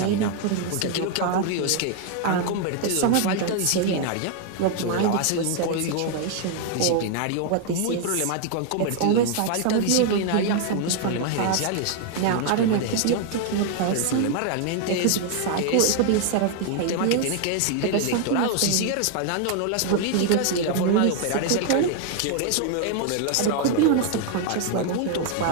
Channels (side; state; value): both; different; correlation 0.00